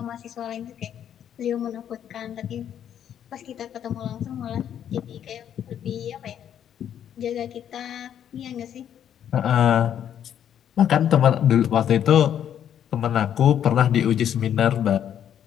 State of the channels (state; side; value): quieter; right; 9.7 dB